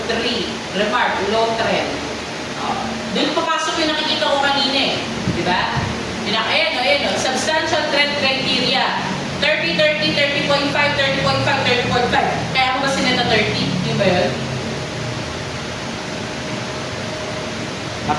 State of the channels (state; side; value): identical; both; correlation 1.00